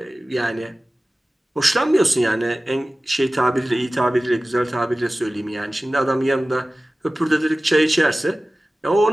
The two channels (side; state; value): both; normal; correlation 0.97